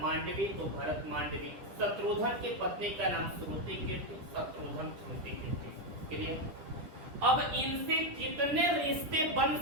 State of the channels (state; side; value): late; left; 10 ms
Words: मांडवी तो भरत मांडवी, शत्रुघ्न के पत्नी का नाम श्रुति कीर्ति, शत्रुघ्न श्रुति कीर्ति। क्लियर? अब इनसे कितने रिश्ते बन